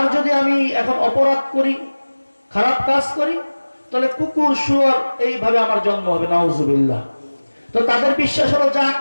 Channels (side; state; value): both; inverted; correlation -1.00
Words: যদি আমি এখন অপরাধ করি, খারাপ কাজ করি, তাহলে কুকুর শুয়োর এইভাবে আমার জন্ম হবে। নাউজুবিল্লাহ। তো তাদের বিশ্বাস হলো যা